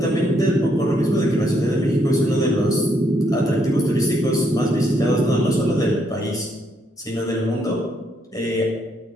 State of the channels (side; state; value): both; normal; correlation 0.74